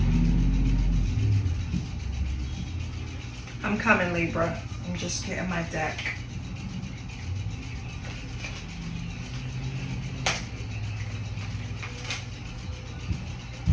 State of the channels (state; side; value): identical; both; correlation 1.00